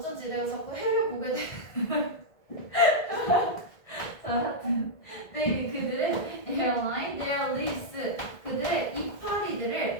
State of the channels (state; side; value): late; right; 1.7 ms